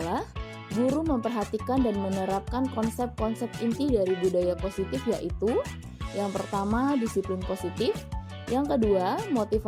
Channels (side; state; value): both; identical; correlation 1.00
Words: guru memperhatikan dan menerapkan konsep-konsep inti dari budaya positif, yaitu yang pertama, disiplin positif, yang kedua,